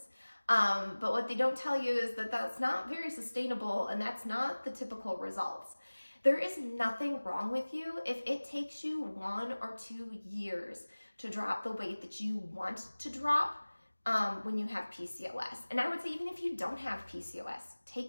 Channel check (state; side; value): inverted; both; correlation -1.00